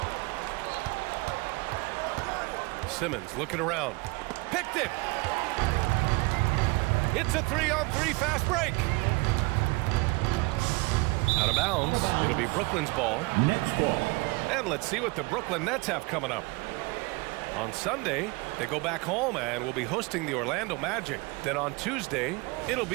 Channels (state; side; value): quieter; left; 25.7 dB